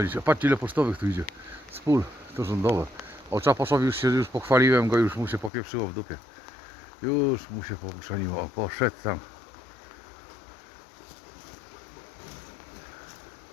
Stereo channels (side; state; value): right; drops out; at 5.5 s